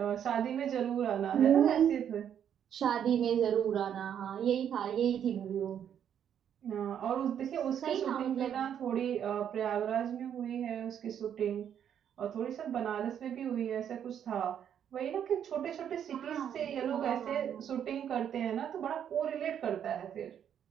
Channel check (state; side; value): quieter; left; 9.1 dB